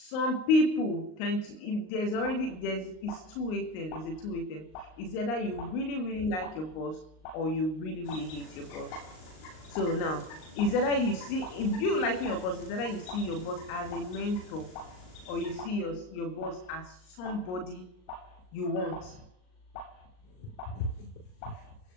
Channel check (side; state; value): right; late; 38 ms